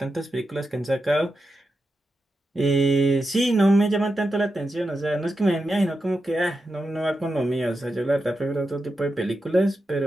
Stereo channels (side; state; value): both; normal; correlation 0.88